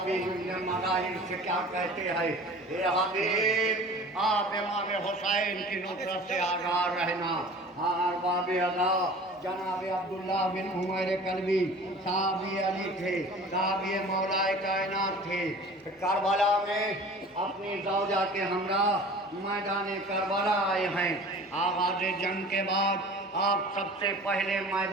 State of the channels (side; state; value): both; normal; correlation 0.42